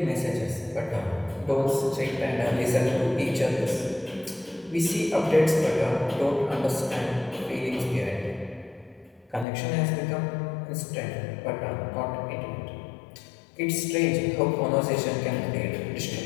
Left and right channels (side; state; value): right; drops out; at 9.5 s